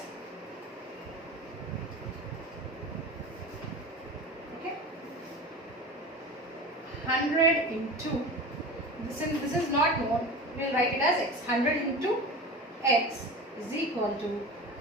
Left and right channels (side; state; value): both; normal; correlation 0.32